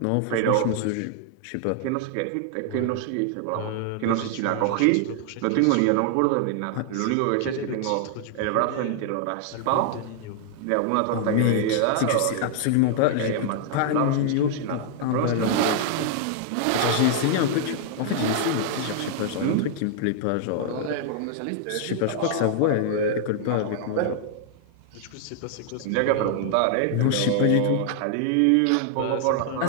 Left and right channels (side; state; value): both; different; correlation 0.00